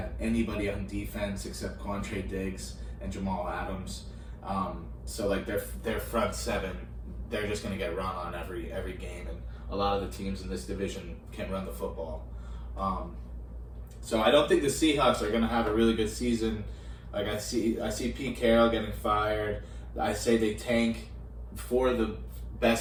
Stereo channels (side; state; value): both; identical; correlation 1.00